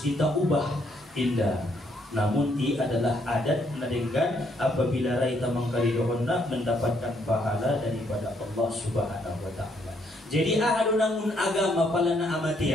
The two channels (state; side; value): normal; both; correlation 0.71